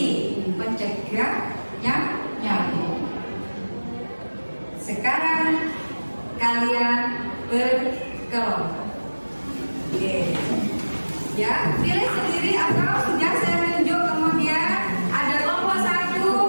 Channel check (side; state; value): both; inverted; correlation -1.00